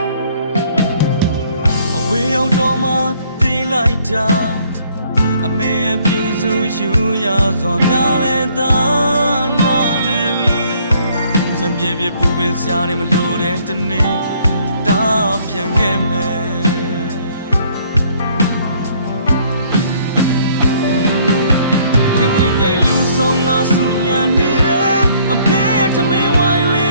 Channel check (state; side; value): inverted; both; correlation -0.62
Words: အဝေးရောက်တော့မှသိလိုက်တာအမေရဲ့ပြူစုယူရစွာများလဲသာနာလဲပြီးစံပြေပြေပူပင်စရာနေမလို့တဲ့တနေ့တာပြန်ခဲ့မယ်ဝင်ဝင်ငိမ်လူဆုံးငါဆူညံနေတယ်အမေရဲ့ထမင်းဝိုင်းလေ